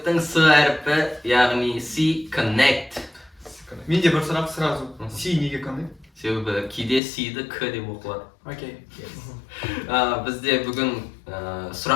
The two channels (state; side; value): drops out; right; at 7.0 s